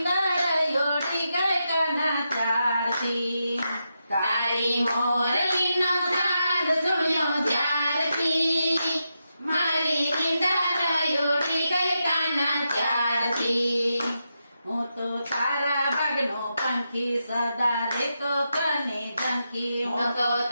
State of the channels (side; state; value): both; inverted; correlation -0.86